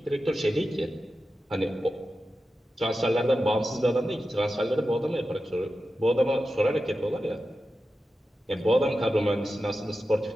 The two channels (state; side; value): normal; both; correlation 0.92